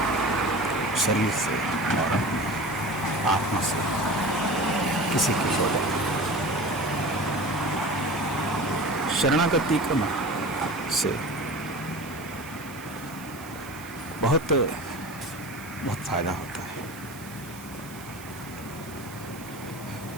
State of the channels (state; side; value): noise; right; hiss, 18 dB below the sound